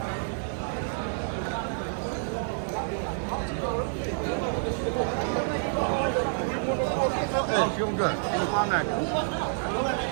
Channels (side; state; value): left; silent; 59 dB below the other